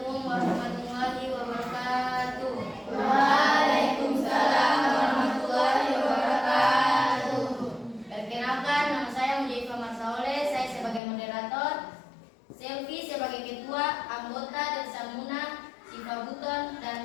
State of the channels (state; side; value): drops out; right; at 11.0 s